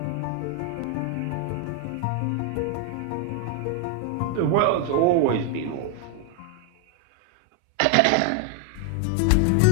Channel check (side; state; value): both; different; correlation 0.00